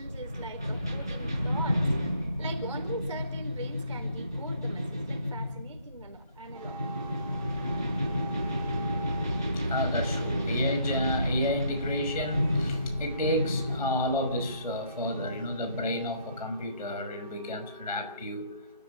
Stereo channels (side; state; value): both; inverted; correlation -0.64